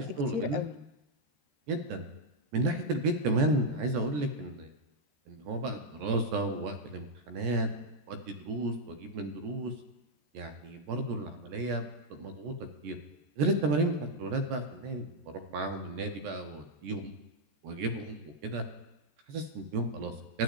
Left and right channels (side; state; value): left; late; 13 ms